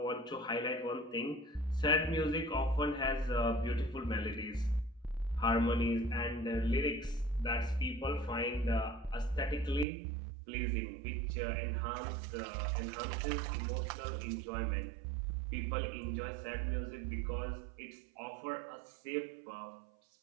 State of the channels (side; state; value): left; drops out; at 9.9 s